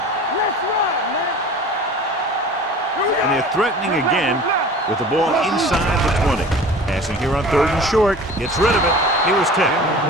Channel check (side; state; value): both; normal; correlation 0.41